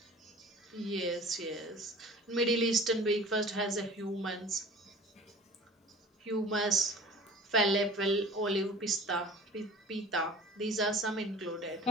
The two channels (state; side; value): normal; both; correlation 0.43